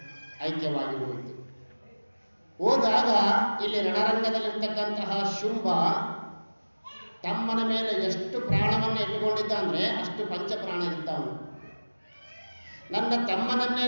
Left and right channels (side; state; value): both; inverted; correlation -1.00